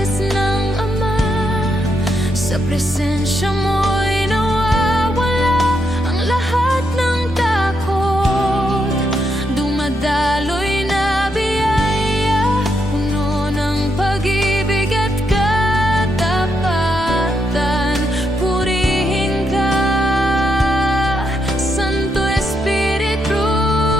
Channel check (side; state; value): both; normal; correlation 0.79